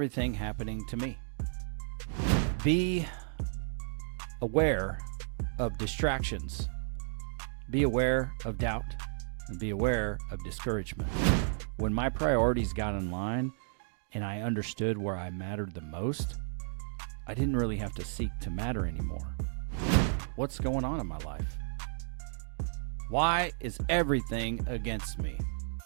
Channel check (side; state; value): left; silent; digital silence